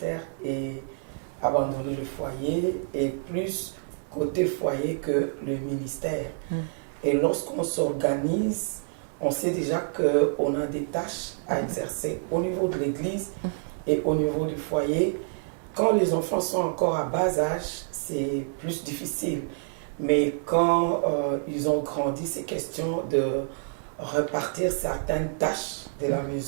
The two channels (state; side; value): silent; left; 60 dB below the other